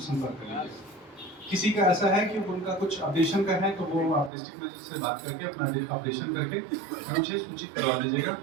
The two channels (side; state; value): left; drops out; at 4.3 s